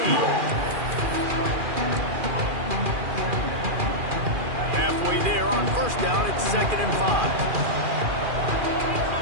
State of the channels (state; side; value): late; left; 2.4 ms